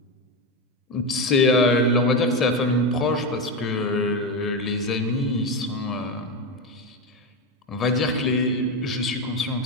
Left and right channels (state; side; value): normal; both; correlation 0.14